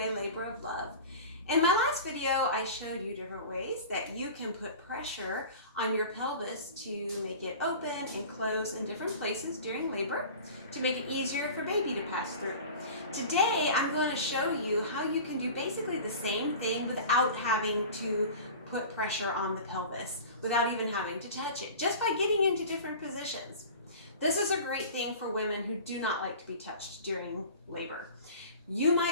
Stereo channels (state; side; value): inverted; both; correlation -0.38